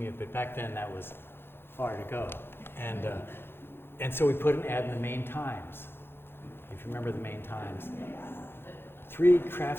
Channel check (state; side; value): late; right; 0.11 ms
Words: but back then that was far to go. And so we put an ad in the Maine Times. If you remember the Maine Times, 3